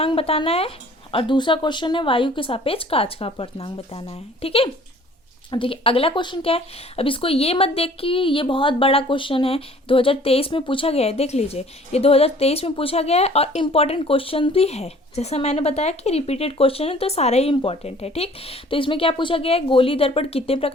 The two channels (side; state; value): both; normal; correlation 0.53